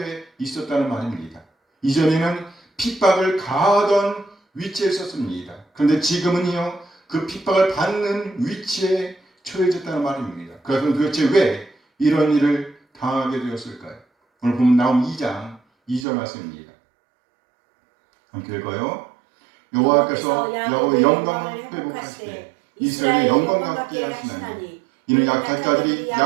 있었다는 말입니다. 이전에는 핍박을 가하던 위치에 있었습니다. 그런데 지금은요, 그 핍박을 받는 위치에 처해졌다는 말입니다. 그래서 도대체 왜 이런 일을 당하게 되었을까요? 오늘 보면 나온 2장 2절 말씀입니다. 함께 읽어요. 여호와께서 야곱의 영광을 회복하시되 이스라엘의 영광 같게 하시나니 이는 약탈 자들이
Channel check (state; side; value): drops out; left; at 16.1 s